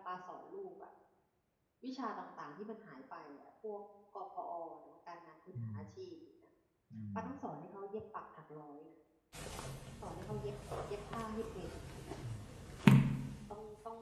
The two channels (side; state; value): both; identical; correlation 1.00